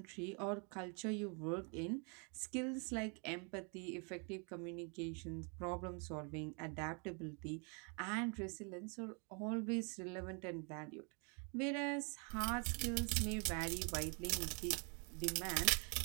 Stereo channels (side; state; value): left; quieter; 36.9 dB